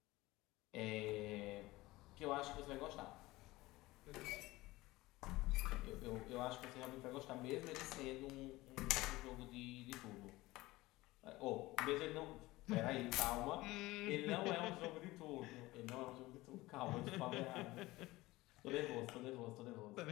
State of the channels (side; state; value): right; quieter; 19.4 dB